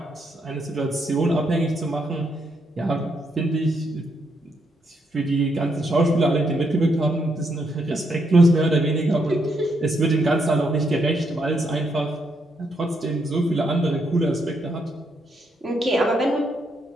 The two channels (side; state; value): both; normal; correlation 0.77